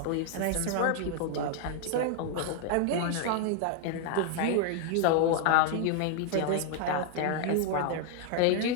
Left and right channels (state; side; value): different; both; correlation 0.00